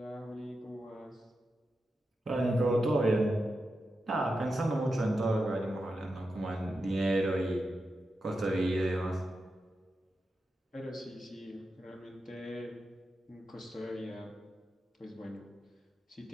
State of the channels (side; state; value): both; normal; correlation 0.89